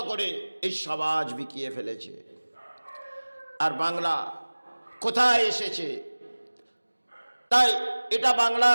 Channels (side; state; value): both; inverted; correlation -1.00